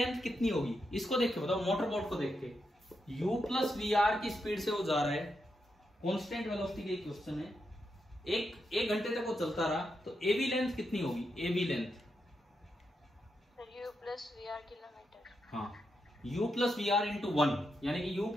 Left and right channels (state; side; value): normal; both; correlation 0.84